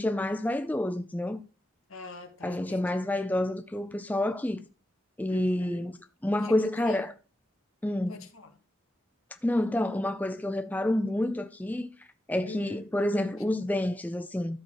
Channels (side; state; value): both; normal; correlation 0.90